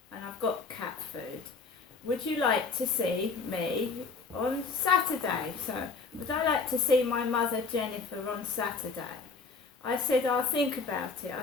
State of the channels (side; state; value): right; quieter; 4.5 dB